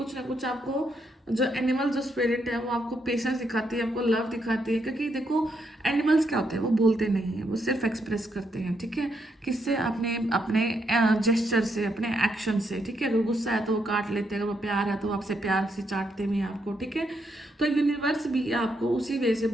ना कुछ आपको जो एनिमल जो स्पिरिट है वो आपको पेशेंस दिखाती है, आपको लव दिखाती है। क्योंकि देखो एनिमल्स क्या होते हैं, वो बोलते नहीं है, वो सिर्फ एक्सप्रेस करते हैं, ठीक है। किससे? अपने अपने जेस्चर से, अपने एक्शन से, ठीक है। अगर गुस्सा है तो वो काट लेते हैं, अगर वो प्यार है तो वो आपसे प्यार से चाटते भी हैं आपको, ठीक है। तो यूनिवर्स भी आपको उसी वे से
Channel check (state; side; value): normal; both; correlation 0.78